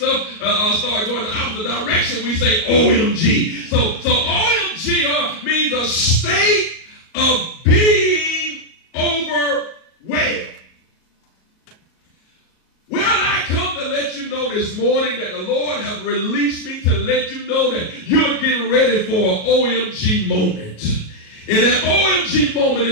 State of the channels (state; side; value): late; right; 37 ms